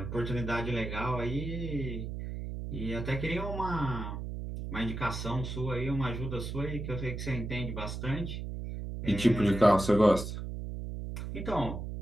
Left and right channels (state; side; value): noise; right; hum, 6 dB below the sound